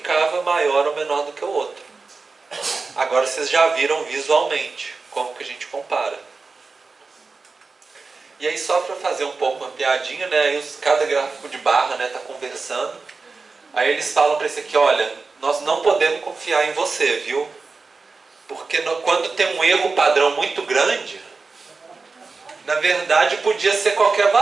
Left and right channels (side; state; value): left; quieter; 4.2 dB